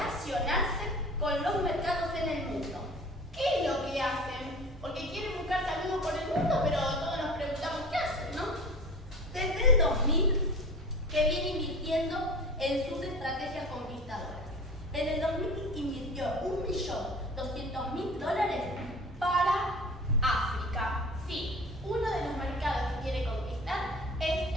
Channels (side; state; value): both; normal; correlation 0.38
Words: con los mercados en el mundo. ¿Qué es lo que hacen? Porque quieren buscar saludos por el mundo, pero todos nos preguntamos qué hacen, ¿no? Desde el 2000 que viene invirtiendo en sus estrategias conquistadoras. En el 2000 invirtió $1.200.000 para África. Sí, uno de los mercados que quiere conquistar es